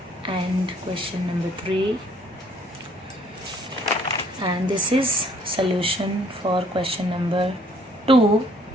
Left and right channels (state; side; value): normal; both; correlation 0.62